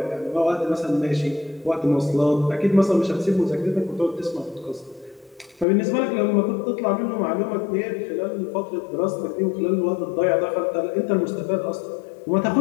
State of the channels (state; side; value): drops out; right; at 5.7 s